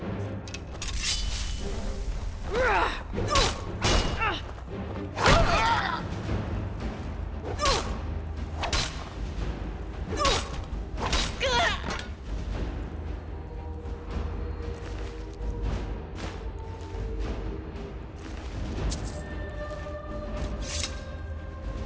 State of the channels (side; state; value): both; identical; correlation 1.00